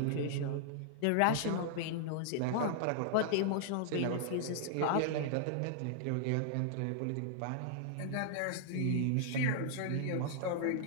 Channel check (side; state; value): both; different; correlation -0.01